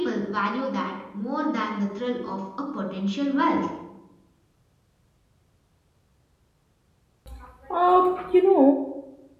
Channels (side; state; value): both; identical; correlation 1.00